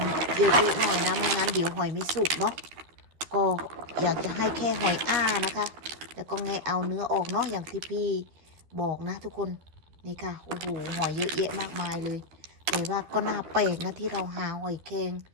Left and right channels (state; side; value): late; left; 12 ms